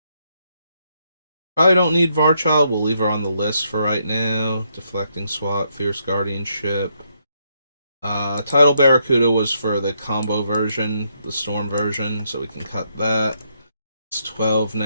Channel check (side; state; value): both; inverted; correlation -0.76